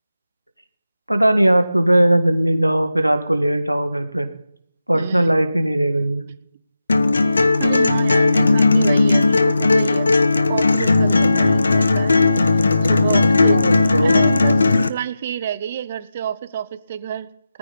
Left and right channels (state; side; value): inverted; both; correlation -0.92